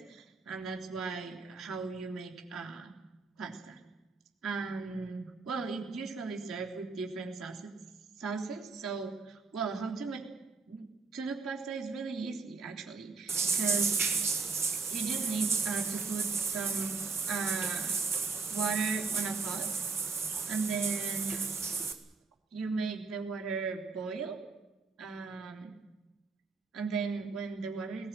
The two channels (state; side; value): quieter; left; 4.5 dB